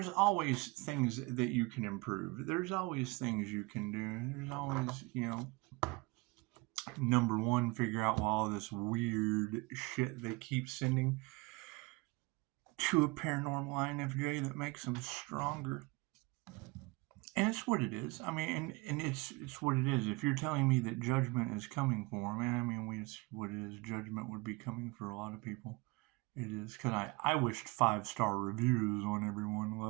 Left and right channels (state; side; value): quieter; left; 24.8 dB